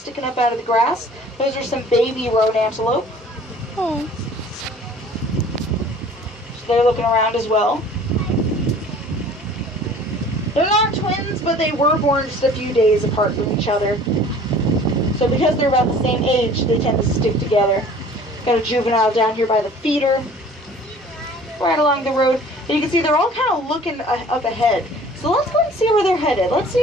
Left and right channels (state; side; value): normal; both; correlation 0.49